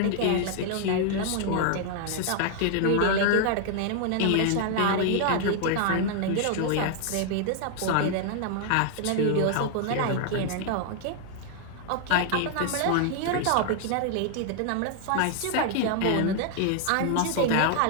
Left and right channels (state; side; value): different; both; correlation 0.00